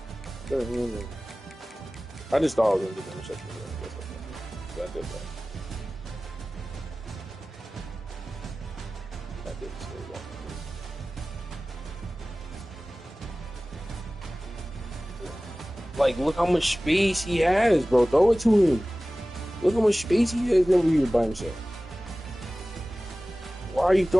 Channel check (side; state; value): both; normal; correlation 0.97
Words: I just thought I was going to get the interception. I did that. I didn't say that. Like, look how much space he has, bro. Throw it to him. Look how much space he has over here by himself. Why are you